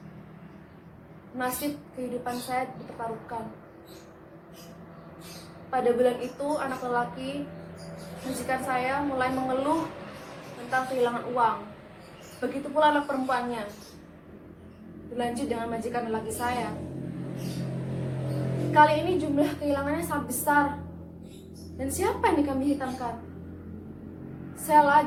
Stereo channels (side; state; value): both; identical; correlation 1.00